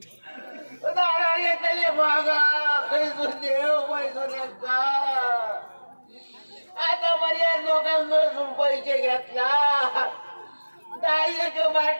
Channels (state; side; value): inverted; both; correlation -1.00